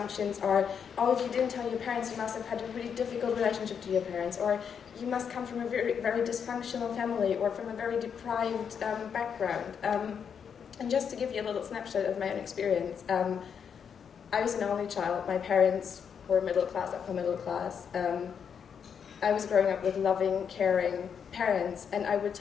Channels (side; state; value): right; quieter; 7.2 dB